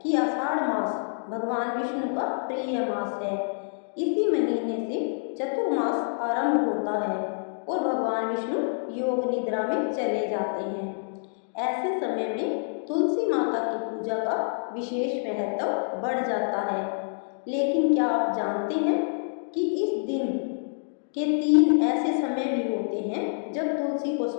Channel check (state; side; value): silent; right; digital silence